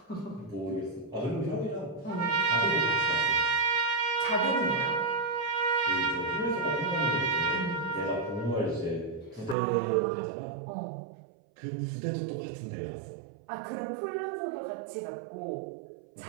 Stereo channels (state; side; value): drops out; left; at 9.6 s